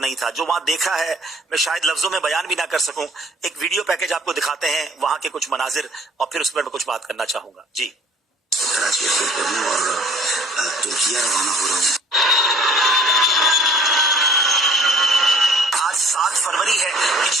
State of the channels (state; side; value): normal; both; correlation 0.54